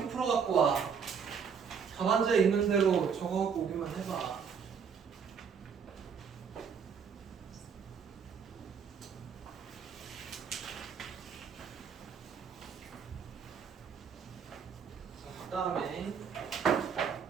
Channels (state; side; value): quieter; left; 6.6 dB